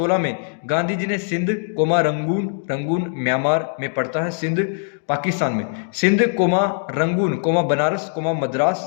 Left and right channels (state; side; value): silent; right; digital silence